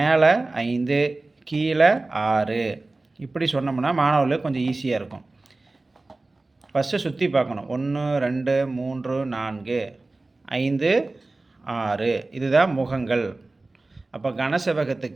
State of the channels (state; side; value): quieter; left; 3.2 dB